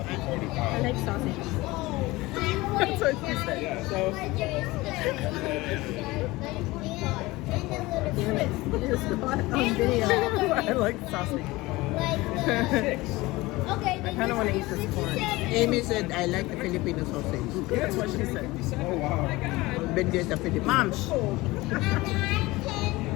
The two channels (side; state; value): right; quieter; 20.6 dB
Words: I like sausage. That's what she said. Yeah, so Just got it on video. I like sausage. Okay, I kind of want to eat this corn. Amy said, I like the Filipino sausage. That's what she said. oh wow. Bendi's the Filipino. Mom,